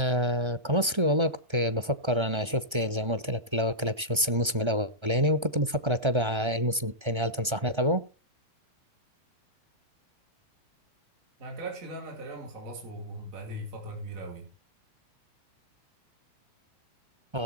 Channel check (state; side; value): late; left; 1.3 ms